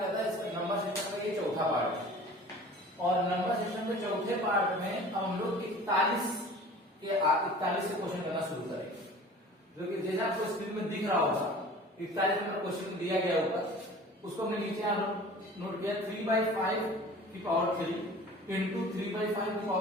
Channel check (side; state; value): both; normal; correlation 0.43